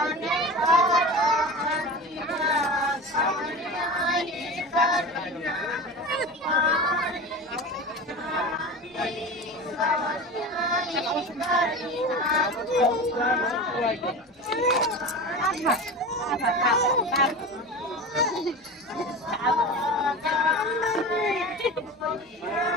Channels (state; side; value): normal; both; correlation 0.30